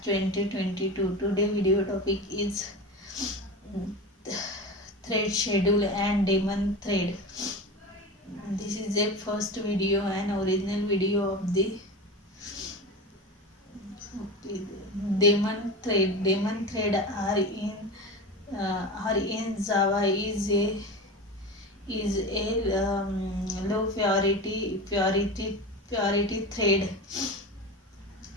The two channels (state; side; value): normal; both; correlation 0.27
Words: 2022. Today video topic is um, thread schedule and daemon thread. This is the first video and original video of the daemon thread. Daemon thread are in Java is a low purity thread